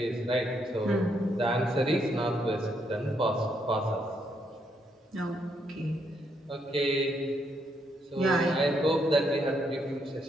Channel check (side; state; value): both; normal; correlation 0.75